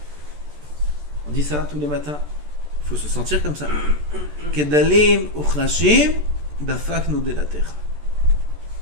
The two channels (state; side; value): late; left; 14 ms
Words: On dit ça tous les matins. Il faut se sentir comme ça. Kedalim uchrashim dafaknu delatecha.